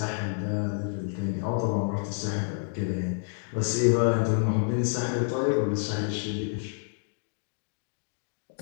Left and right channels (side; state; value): right; silent; digital silence